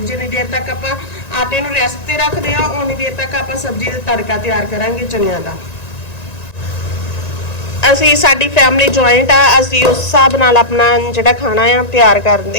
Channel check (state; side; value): late; right; 1.9 ms